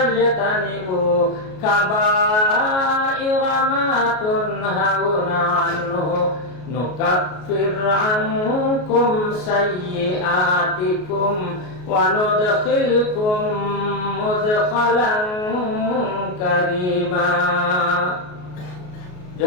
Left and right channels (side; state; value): right; late; 33 ms